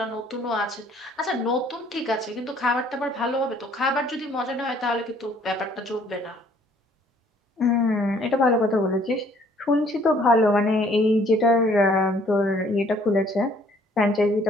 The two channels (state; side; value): normal; both; correlation 0.60